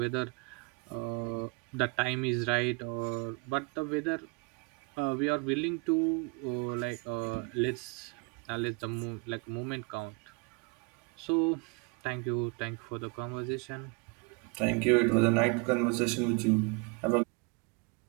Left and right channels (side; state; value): left; quieter; 31.3 dB